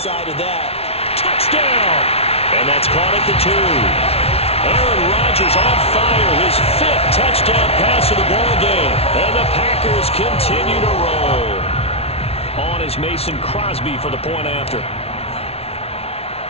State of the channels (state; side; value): late; right; 0.30 ms